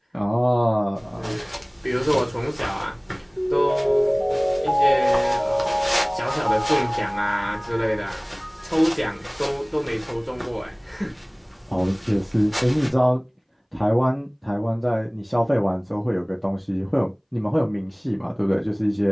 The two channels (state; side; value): identical; both; correlation 1.00